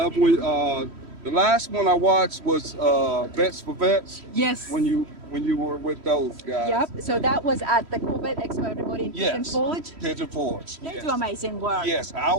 when the last one I watched was Vets for Vets. Yes. When you were with those guys. Yep. So that was at the Corvette Expo, everybody in Pigeon Yes. Forge. Pigeon Forge. They Yes. do amazing work. Yes, I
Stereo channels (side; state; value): left; late; 3.1 ms